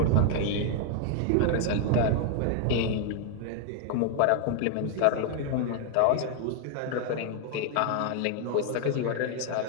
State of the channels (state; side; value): different; both; correlation 0.00